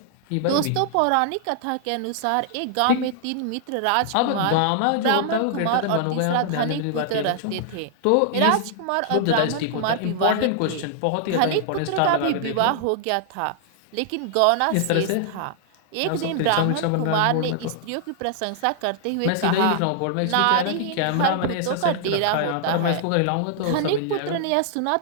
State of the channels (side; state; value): both; different; correlation -0.01